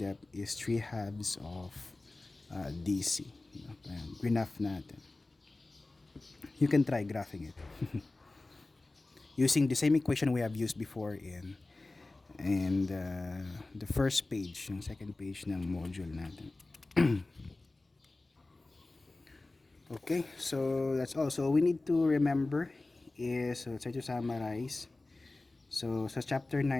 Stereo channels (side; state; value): right; quieter; 3.1 dB